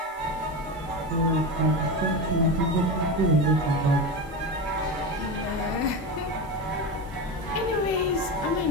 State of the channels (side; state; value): both; normal; correlation 0.20